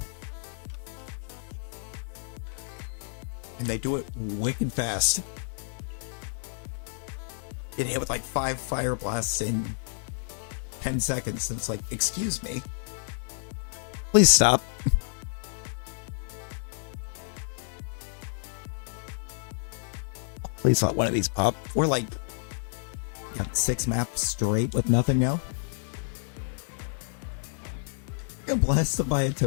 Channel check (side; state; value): right; silent; 58 dB below the other